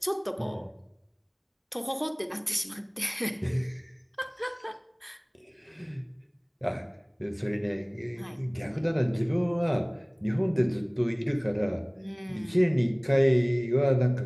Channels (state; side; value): identical; both; correlation 1.00